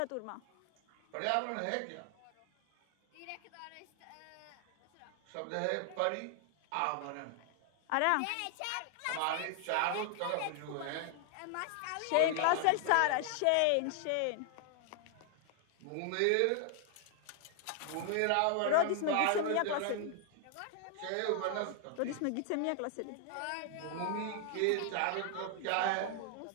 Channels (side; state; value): both; different; correlation 0.00